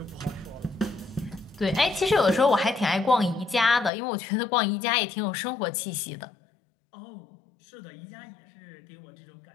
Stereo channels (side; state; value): right; drops out; at 3.9 s